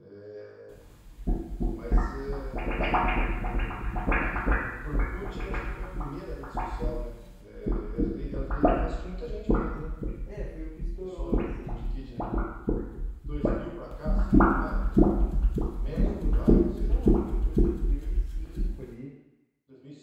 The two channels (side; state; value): both; identical; correlation 1.00